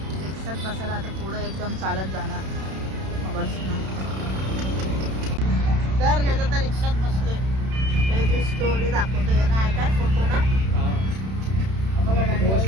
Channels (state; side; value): late; left; 31 ms